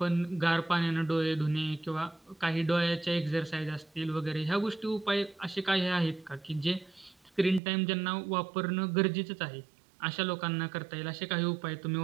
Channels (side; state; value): left; drops out; at 7.6 s